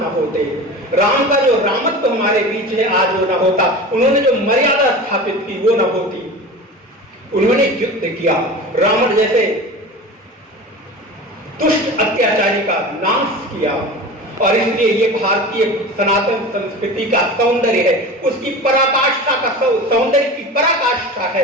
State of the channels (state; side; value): normal; both; correlation 0.33